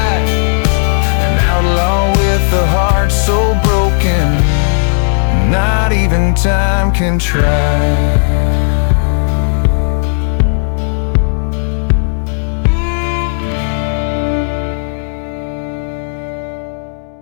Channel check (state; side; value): silent; right; digital silence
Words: An outlaw with a heart so broken, not even time can try.